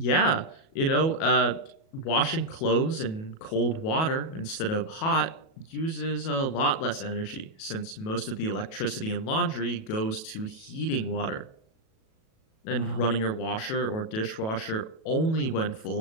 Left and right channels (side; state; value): right; late; 37 ms